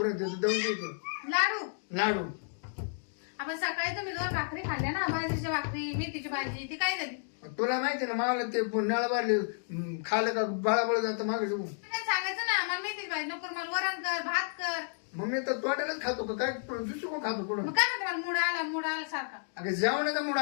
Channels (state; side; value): silent; right; digital silence